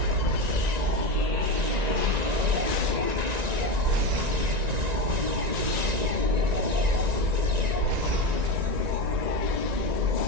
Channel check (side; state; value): left; late; 1.9 ms